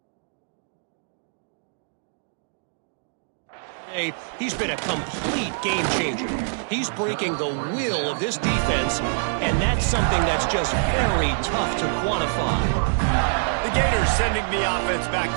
he's been a complete game changer. He's breaking the will of this defense, and that's something that's just very tough to quantify. The Gators sending the offense back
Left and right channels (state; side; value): silent; left; digital silence